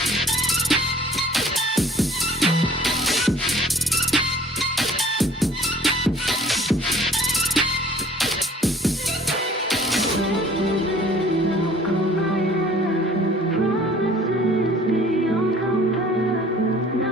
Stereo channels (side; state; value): both; normal; correlation 0.52